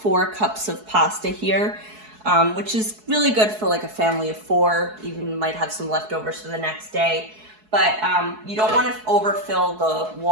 cups of pasta here, which is really good for like a family of 4. Even might have some leftovers for the next day. But you don't want to overfill the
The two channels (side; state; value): left; late; 4.7 ms